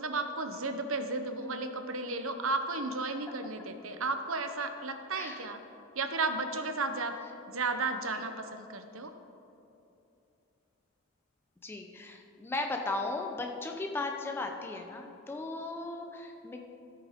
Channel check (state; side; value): normal; both; correlation 0.14